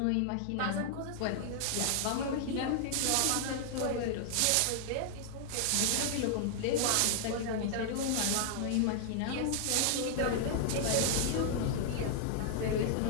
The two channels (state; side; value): different; both; correlation 0.00